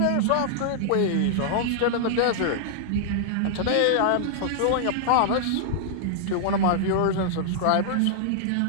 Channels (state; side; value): different; both; correlation -0.01